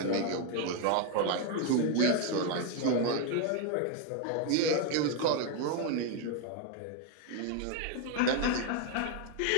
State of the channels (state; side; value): different; both; correlation 0.01